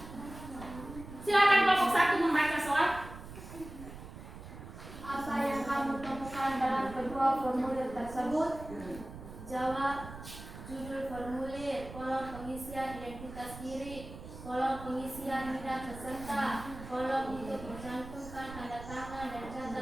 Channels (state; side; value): noise; right; rumble, 13 dB below the sound